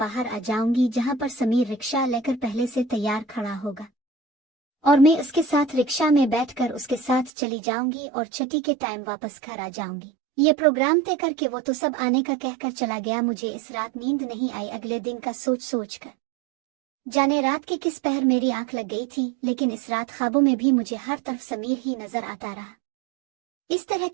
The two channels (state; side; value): drops out; left; at 7.3 s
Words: आ जाऊंगी, जहां पर समीर रिक्शा लेकर पहले से तैयार खड़ा होगा और मैं उसके साथ रिक्शा में बैठकर उसके साथ चली जाऊंगी और छठी के टाइम वापस घर आ जाऊंगी। ये प्रोग्राम तय करके वो तो सब आने का कहकर चला गया। मुझे इस रात नींद नहीं आई अगले दिन का सोच कर। जाने रात के किस पहर मेरी आंख लग गई थी, लेकिन इस रात ख्वाबों में भी मुझे हर तरफ समीर ही नजर आता रहा। इस तरह